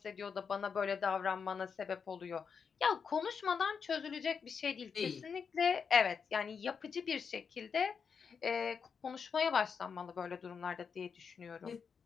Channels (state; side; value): quieter; right; 6.2 dB